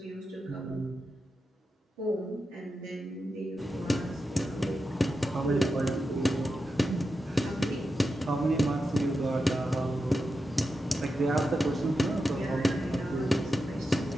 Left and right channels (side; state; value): both; normal; correlation 0.89